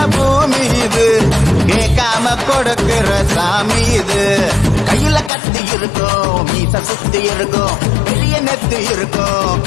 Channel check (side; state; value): right; drops out; at 5.3 s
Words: பூமி இது, கேட்காம கொடுக்கிற சாமி இது. கையில கத்தி இருக்கும், மீச சுத்தி இருக்கும், பெரிய நெத்து இருக்கும்,